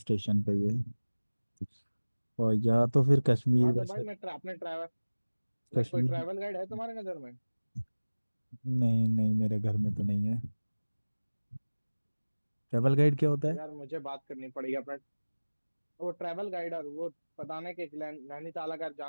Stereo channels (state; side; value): inverted; both; correlation -1.00